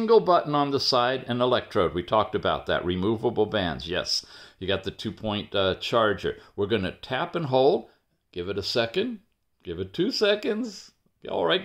button on the side, an electrode. We talked about that. Removable bands, yes. You got the 2-point charger. We're going to tap and hold. Give it a second. Give it 2 seconds. All right,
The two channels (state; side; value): identical; both; correlation 1.00